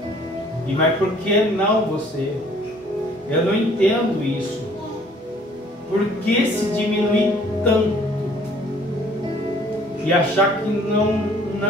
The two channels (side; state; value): both; normal; correlation 0.57